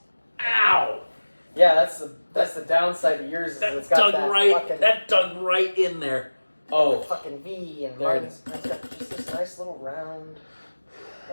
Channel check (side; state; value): both; inverted; correlation -1.00